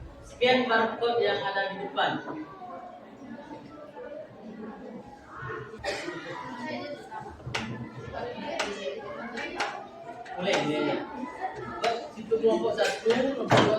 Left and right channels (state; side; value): identical; both; correlation 1.00